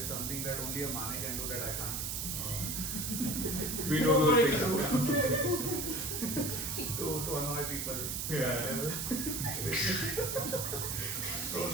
something that only a Mane can do that I can't. We know those things. to annoy people. Yeah. So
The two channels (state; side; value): noise; right; hiss, 2 dB below the sound